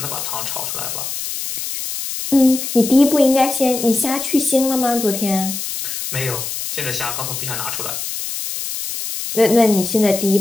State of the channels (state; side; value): noise; left; hiss, 5 dB below the sound